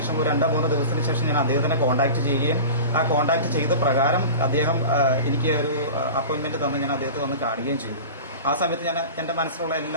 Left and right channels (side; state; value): both; inverted; correlation -0.34